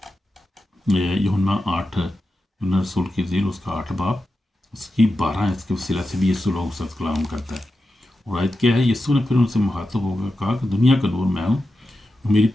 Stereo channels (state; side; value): normal; both; correlation 0.91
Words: यूहन्ना 8, यूहन्ना रसूल की ज़ील उसका 8 बाब उसकी 12, इसके वसीला से भी यीशु लोगों के साथ कलाम करता है। और आयत क्या है? यीशु ने फिर उनसे मुखातब होकर कहा कि दुनिया का नूर मैं हूँ, मेरी